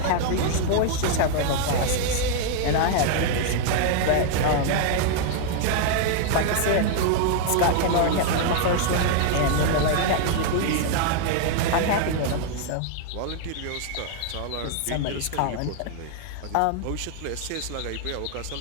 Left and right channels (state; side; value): different; both; correlation 0.00